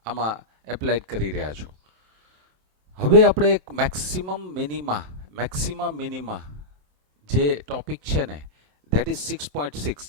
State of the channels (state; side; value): late; left; 27 ms